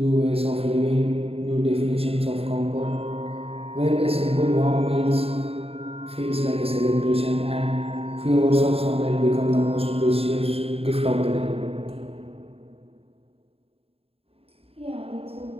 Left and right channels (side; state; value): left; late; 0.28 ms